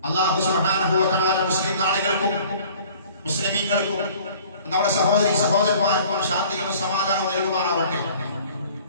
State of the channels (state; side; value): inverted; both; correlation -0.51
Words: അല്ലാഹു സുബ്ഹാനഹു വ തആല മുസ്ലിം നാടുകൾക്കും മുസ്ലിമീങ്ങൾക്കും നമ്മുടെ സഹോദരീ സഹോദരന്മാർക്കും ശാന്തിയും സമാധാനവും നൽകുമാറാവട്ടെ.